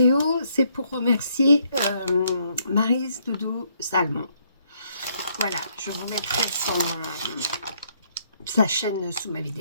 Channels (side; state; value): both; inverted; correlation -0.71